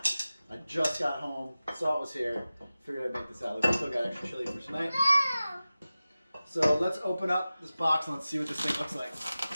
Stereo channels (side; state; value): both; inverted; correlation -0.96